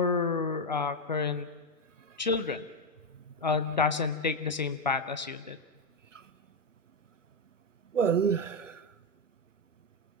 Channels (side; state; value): both; normal; correlation 0.06